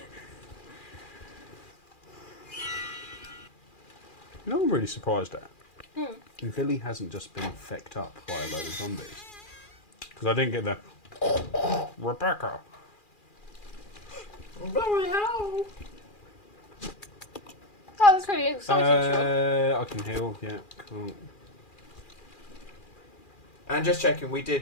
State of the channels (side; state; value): right; late; 2.4 ms